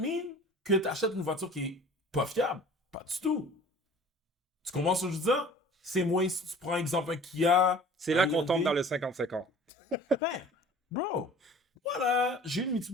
que tu achètes une voiture qui est pas fiable? Pas du tout. Tu comprends ce que je veux dire? C'est moins si tu prends exemple un Kia. C'est là un qu'on tombe Hyundai. dans le 50-50. Ben, bro, voilà, j'ai une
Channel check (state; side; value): normal; both; correlation 0.46